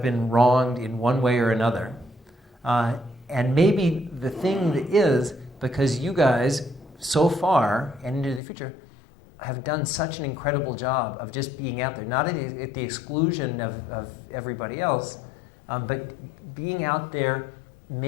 been wronged in one way or another. And maybe the thing is, because you guys, so far and into the future, have done such an incredible job of just being out there, not at the exclusion of everybody else, but being out there,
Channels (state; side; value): drops out; right; at 8.4 s